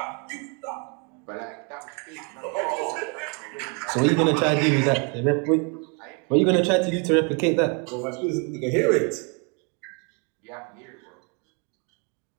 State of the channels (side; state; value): left; quieter; 35.2 dB